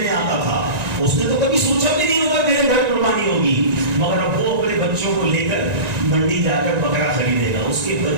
آتا تھا اس نے تو کبھی سوچا بھی نہیں ہوگا میرے گھر قربانی ہوگی مگر اب وہ اپنے بچوں کو لے کر منڈی جا کر بکرا خریدے گا. اس کے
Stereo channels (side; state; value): left; late; 1.9 ms